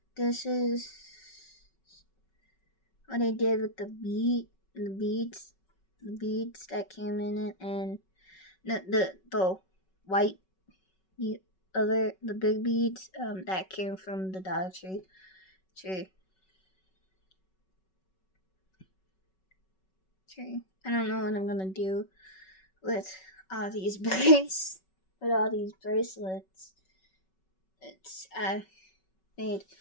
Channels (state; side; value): late; right; 5.3 ms